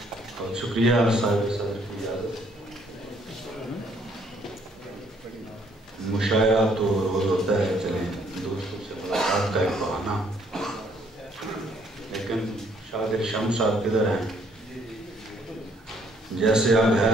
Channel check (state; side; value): normal; both; correlation 0.66